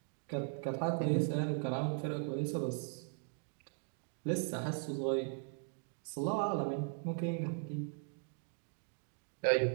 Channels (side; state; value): left; silent; 52 dB below the other